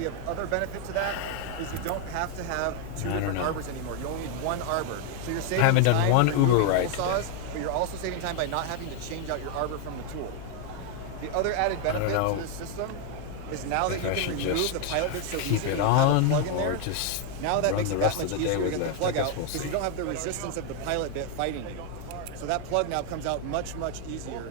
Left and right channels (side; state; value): both; different; correlation 0.01